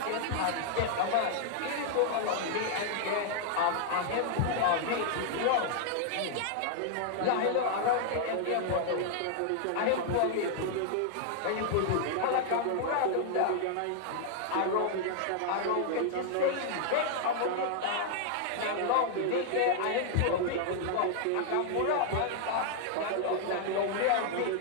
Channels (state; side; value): different; both; correlation -0.01